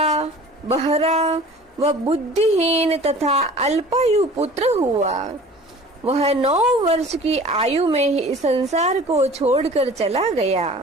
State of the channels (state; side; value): normal; both; correlation 0.44